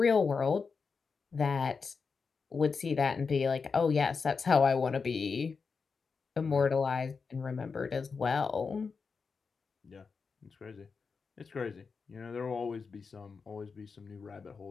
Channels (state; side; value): quieter; right; 5.1 dB